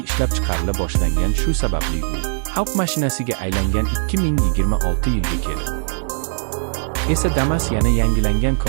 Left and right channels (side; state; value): left; silent; digital silence